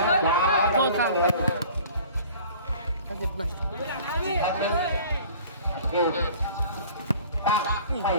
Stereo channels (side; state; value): both; inverted; correlation -0.47